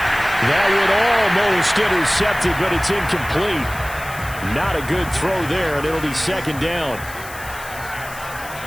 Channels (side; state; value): left; noise; hiss, 15 dB below the sound